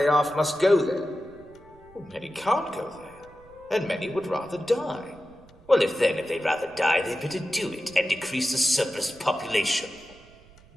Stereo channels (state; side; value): noise; right; rumble, 26 dB below the sound